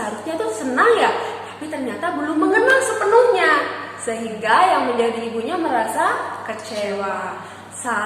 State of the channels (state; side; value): identical; both; correlation 1.00